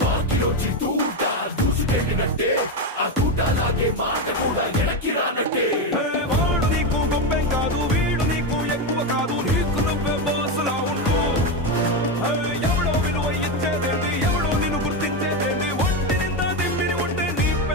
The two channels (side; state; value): both; normal; correlation 0.11